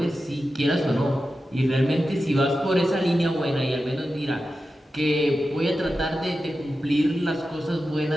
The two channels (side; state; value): both; normal; correlation 0.92